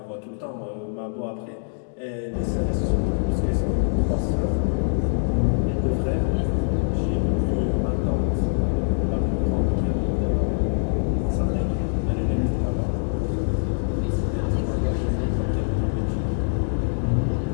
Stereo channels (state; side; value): silent; right; digital silence